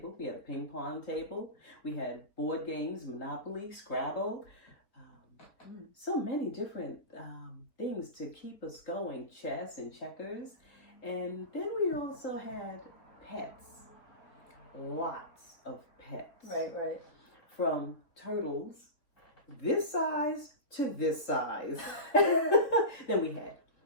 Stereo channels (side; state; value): right; late; 4.1 ms